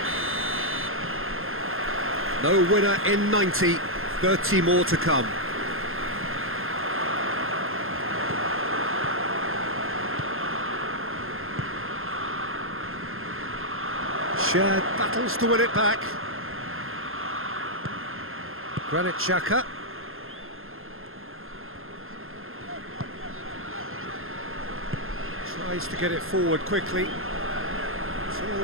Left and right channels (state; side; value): late; left; 0.60 ms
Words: No winner in 90, 30 more to come. Shared battles to win it back. Granit Xhaka. Tries to get it forward quickly. It's